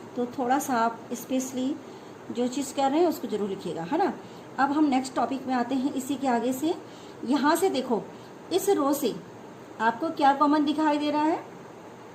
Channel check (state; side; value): identical; both; correlation 1.00